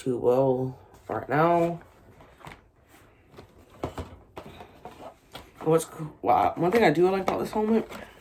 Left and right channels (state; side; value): identical; both; correlation 1.00